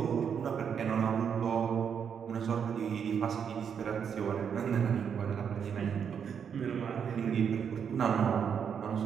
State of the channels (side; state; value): left; quieter; 7.4 dB